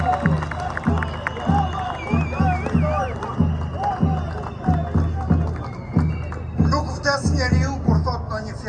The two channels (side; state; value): both; identical; correlation 1.00